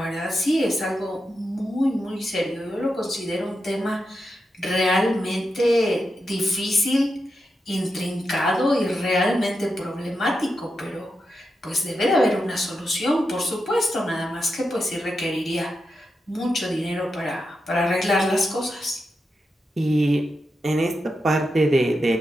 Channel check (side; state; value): both; normal; correlation 0.87